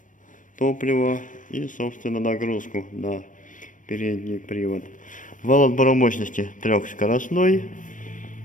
топлива, и, собственно, нагрузку на передний привод. Вал отбора мощности трехскоростной.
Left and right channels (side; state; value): right; late; 0.38 ms